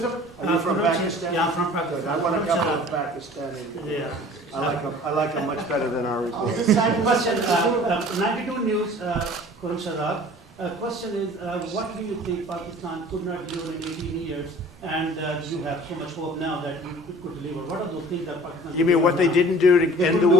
Are you from Pakistan? Yeah, I'm from Pakistan. I want to couple of Pakistani. Yeah. I like them much better than our report. This side question, 92 News, Khurram Shadab. Question is, what do you think Pakistan could not deliver in 18 years, and you have so much hope now that you could deliver? What are those things that Pakistan? You mean what they didn't do to end the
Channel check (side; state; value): both; normal; correlation 0.48